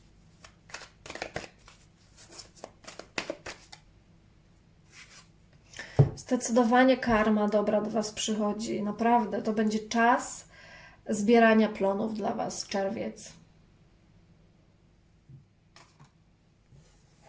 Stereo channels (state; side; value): identical; both; correlation 1.00